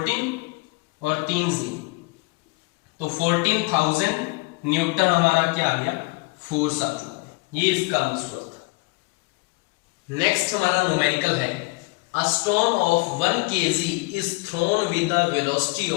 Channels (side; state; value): right; quieter; 26.7 dB